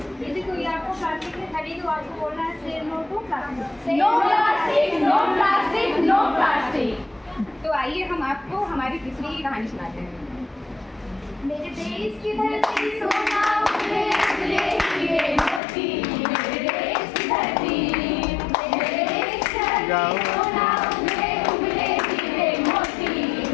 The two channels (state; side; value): drops out; right; at 15.6 s